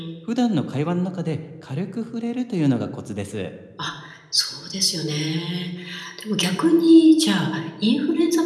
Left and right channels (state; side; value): identical; both; correlation 1.00